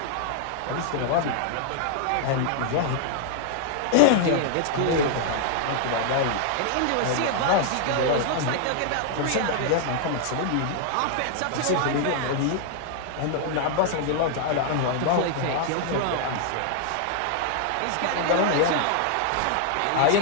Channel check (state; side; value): different; both; correlation -0.01